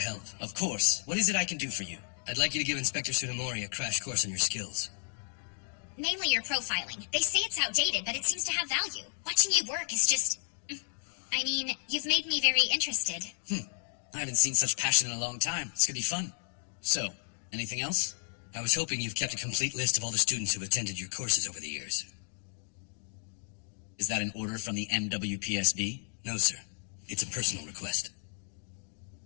Of course. What is it I can do for you? I'd like you to give Inspector Tsunemori a crash course on your skills. Mainly your profiling. They say it's outdated, but it seems to have value. Watching you work is just... I mean, you've made me very interested. I haven't seen such passion in a long time. This could be fun. So, anything else? I was hoping you've kept a complete list of all the students who've attended your courses over the years. Is that an order from the MWPSB? No, sir. It's a personal request.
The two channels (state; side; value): silent; right; digital silence